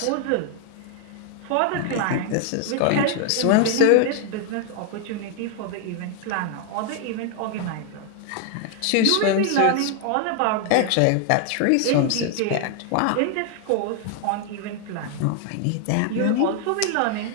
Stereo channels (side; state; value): both; different; correlation 0.00